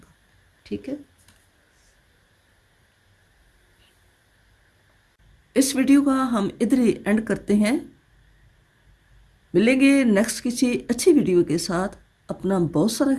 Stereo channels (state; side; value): identical; both; correlation 1.00